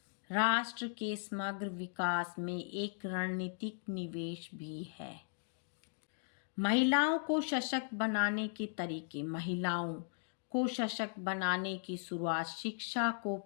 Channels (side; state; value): right; silent; digital silence